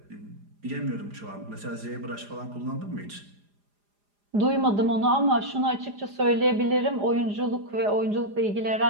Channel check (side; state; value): left; late; 4.9 ms